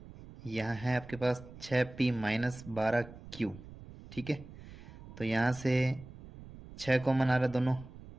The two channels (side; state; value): right; noise; rumble, 16 dB below the sound